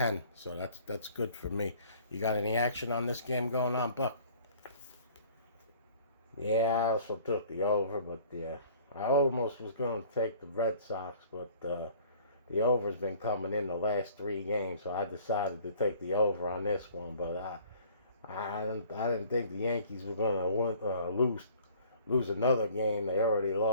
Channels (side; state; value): both; inverted; correlation -0.52